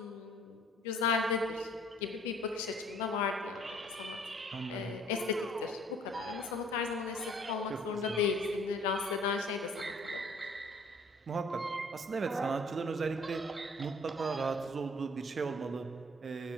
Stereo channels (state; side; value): normal; both; correlation 0.56